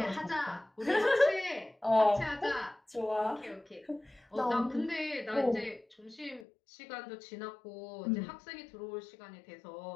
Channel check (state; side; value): drops out; right; at 6.5 s